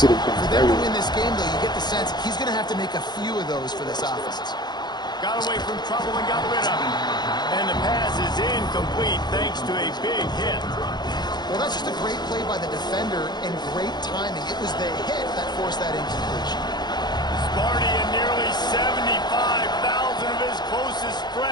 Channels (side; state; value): right; late; 0.21 ms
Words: them to win this game, though, you get the sense he's going to have to make a few of those for this offense. Got away from trouble and got rid of it. And the pass is incomplete thanks to a big hit. Well, that's just a great play by the defender and great timing. It was the hit that forced that incompletion. Sparty and nearly 75,000 of his closest